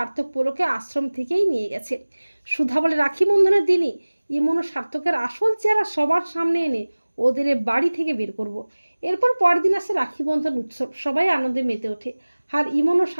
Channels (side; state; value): both; inverted; correlation -1.00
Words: পোলোকে আশ্রম থেকেই নিয়ে গেছে। সুধা বলে রাখি বন্ধনের দিনই ইমন ও সার্থকের আসল চেহারা সবার সামনে এনে ওদের বাড়ি থেকে বের করব। এরপর পরের দিন আসে রাখি বন্ধন উৎসব, সবাই আনন্দে মেতে ওঠে। আর ইমন ও